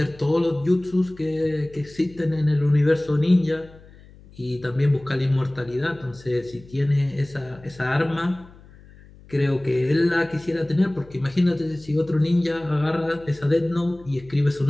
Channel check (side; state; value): left; noise; hum, 23 dB below the sound